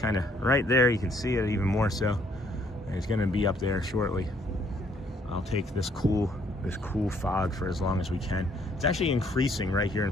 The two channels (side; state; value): both; normal; correlation 0.66